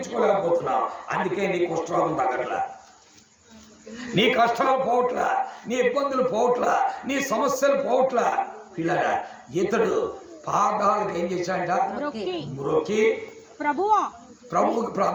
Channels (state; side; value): identical; both; correlation 1.00